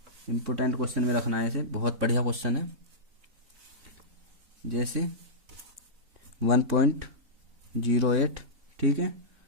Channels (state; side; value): late; left; 3.7 ms